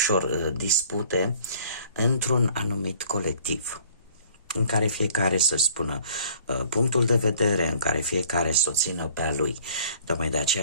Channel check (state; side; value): inverted; both; correlation -0.54